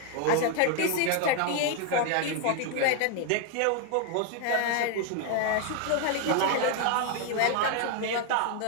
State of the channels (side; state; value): both; different; correlation 0.01